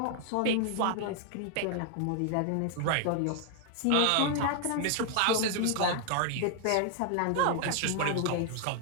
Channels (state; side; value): different; both; correlation 0.00